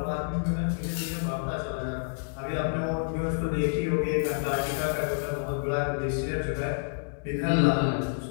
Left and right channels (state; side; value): silent; right; digital silence